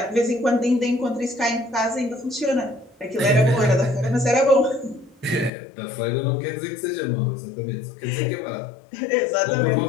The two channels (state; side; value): drops out; right; at 5.5 s